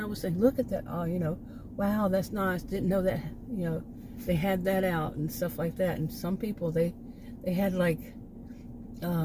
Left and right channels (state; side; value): identical; both; correlation 1.00